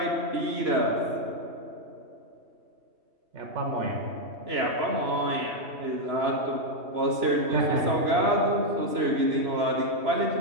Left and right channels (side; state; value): left; late; 3.0 ms